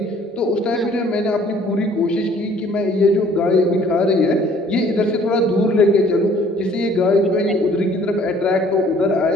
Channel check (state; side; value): normal; both; correlation 0.57